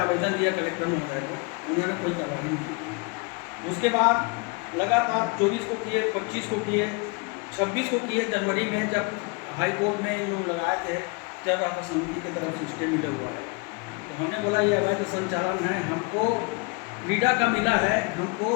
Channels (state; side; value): quieter; right; 29.3 dB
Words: दिया कलेक्टर महोदय को, उन्होंने कोई कार्रवाई नहीं की। उसके बाद लगातार 24 को किए, 25 को किए, 26 को किए। जनवरी में जब हाई कोर्ट में इन लोग लगाए थे, चल रहा था समिति की तरफ से स्टे मिला हुआ है, तो हमने बोला ये अवैध संचालन है, हमको क्रीडा का मिला है, हमको